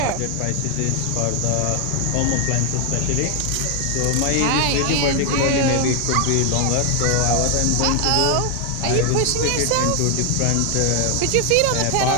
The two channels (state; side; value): different; both; correlation 0.00